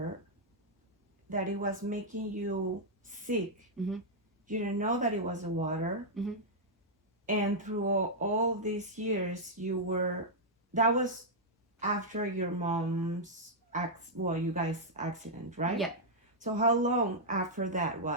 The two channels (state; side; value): normal; both; correlation -0.06